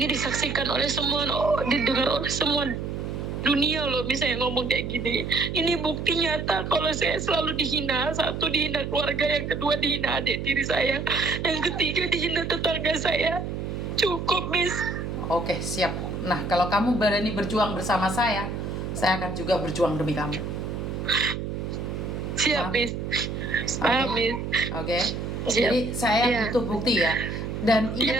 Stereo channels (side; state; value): right; noise; hum, 4 dB below the sound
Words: disaksikan oleh semua, didengar oleh semua dunia loh, misalnya ngomong kayak gini. Ini bukti nyata kalau saya selalu dihina. 1, dihina keluarga, yang kedua dihina adik tiri saya, yang ketiga dihina tetangga saya. Cukup, Miss. Oke, siap. Nah, kalau kamu berani berjuang bersama saya akan juga berjuang demi kamu. Siap, Miss. Miss. Oke. Jadi saya butuh bukti ya. Dan